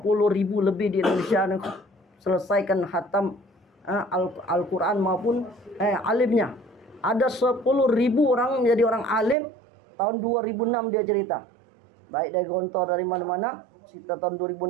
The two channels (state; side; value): drops out; left; at 9.3 s